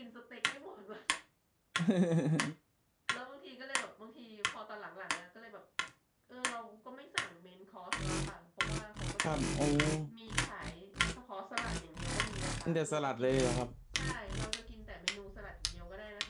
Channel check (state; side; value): identical; both; correlation 1.00